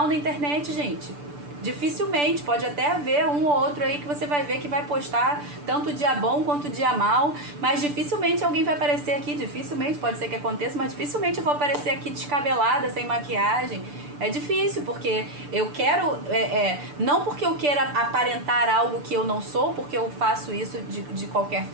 na internet, gente. Dificilmente, pode até haver um ou outro aí que você vai ver que vai postar tanto dia bom quanto dia mal, mas dificilmente alguém vai aparecer aqui, dificilmente, pode ser que aconteça, mas dificilmente eu vou aparecer aqui descabelada, sem maquiagem. É difícil, porque eu quero, não porque eu queira aparentar algo que eu não sou, porque eu faço isso de qualquer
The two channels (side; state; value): left; late; 6.8 ms